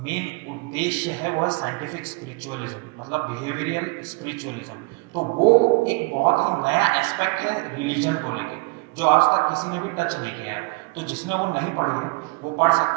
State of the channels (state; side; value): quieter; left; 28.2 dB